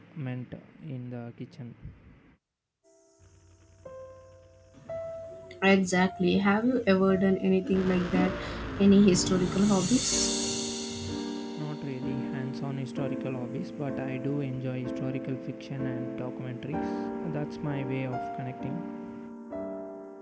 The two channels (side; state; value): both; identical; correlation 1.00